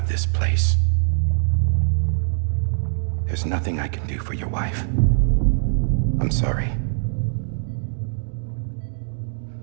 this place. There's nothing I can do for your wife. I'm sorry.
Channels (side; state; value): left; silent; digital silence